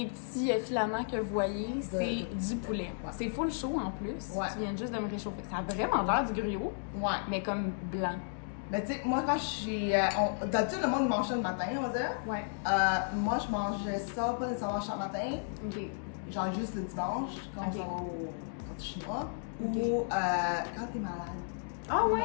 filaments que vous voyez, c'est du poulet. Ouais. C'est full chaud en plus. Ouais. Tu viens juste de me réchauffer. Ça a vraiment l'air du gruau, Ouais. mais comme blanc. Mais tu sais, moi quand j'ai. D'habitude, le monde mange ça le matin, on va dire. Ouais. Moi, je mangeais ça pas nécessairement chaque matin, OK. genre juste le dimanche, quand Ok. on va au chinois, Ok. ou quand t'es malade. Ah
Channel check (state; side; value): silent; right; digital silence